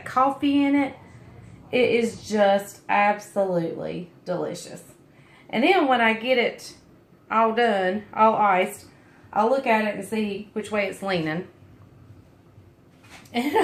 coffee in it. It is just absolutely delicious. And then when I get it all done, all iced, I'll look at it and see which way it's leaning. And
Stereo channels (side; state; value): both; identical; correlation 1.00